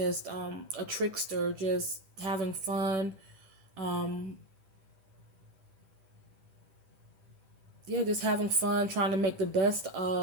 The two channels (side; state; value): left; late; 10 ms